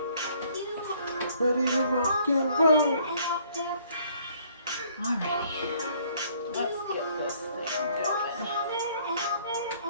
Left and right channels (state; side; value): inverted; both; correlation -0.61